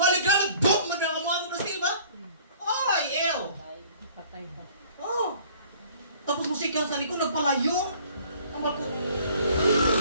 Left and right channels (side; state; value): both; inverted; correlation -0.53